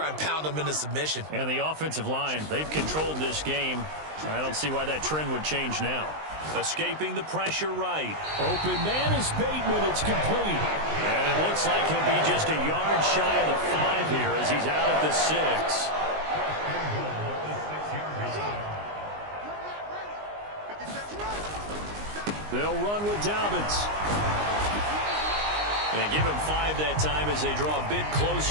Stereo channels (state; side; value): late; left; 19 ms